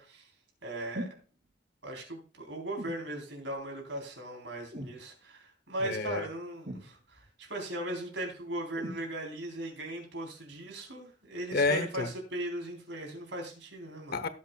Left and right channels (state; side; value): normal; both; correlation 0.11